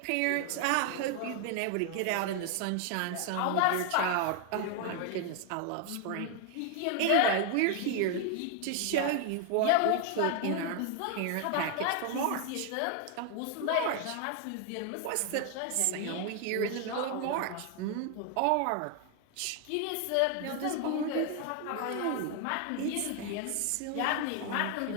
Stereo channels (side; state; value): both; different; correlation 0.00